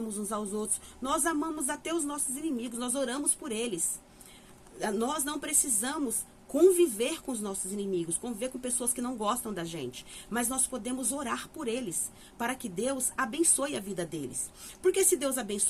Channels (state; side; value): identical; both; correlation 1.00